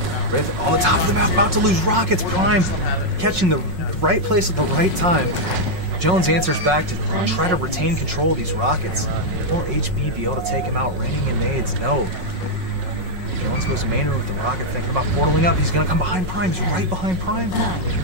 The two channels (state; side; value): late; left; 5.4 ms